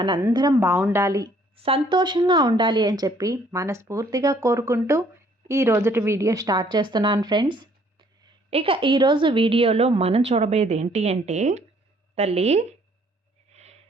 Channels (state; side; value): normal; both; correlation 0.62